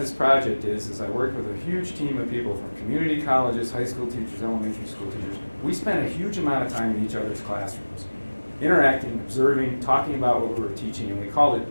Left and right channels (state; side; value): inverted; both; correlation -1.00